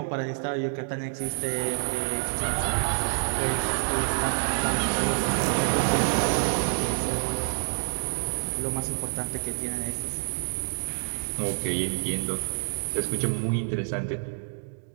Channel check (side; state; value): left; silent; digital silence